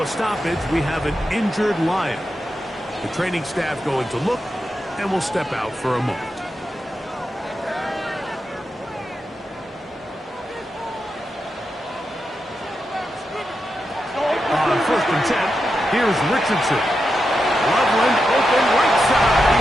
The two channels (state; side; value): normal; both; correlation 0.87